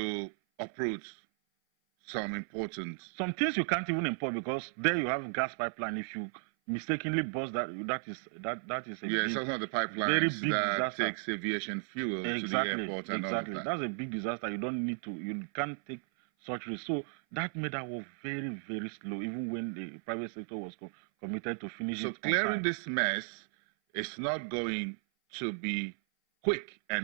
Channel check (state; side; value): silent; left; 55 dB below the other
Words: uproot some important... Some things you can't even import because there you have gas pipeline. If you mistakenly bust that is a it's also the pipelines very big that disaster. Takes aviation fuel to the airport and all of that. That's a big disaster. You can't take such risk. So that made our work very, very slow, even when the private sector was committed to finish it. So clearing this mess is not going to be quick